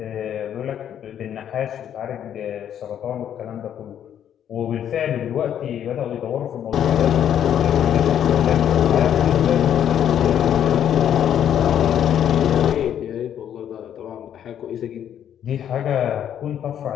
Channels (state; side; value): quieter; right; 9.8 dB